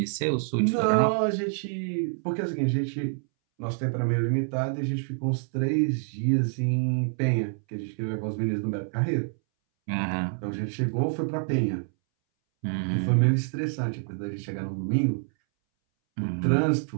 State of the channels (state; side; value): silent; left; 60 dB below the other